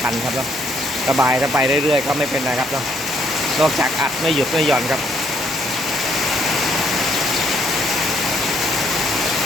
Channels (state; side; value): normal; both; correlation 0.69